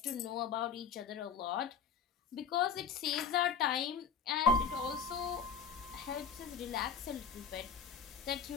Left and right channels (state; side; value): quieter; right; 6.2 dB